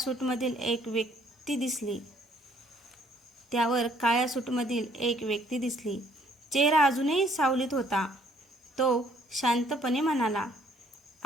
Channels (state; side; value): normal; both; correlation 0.63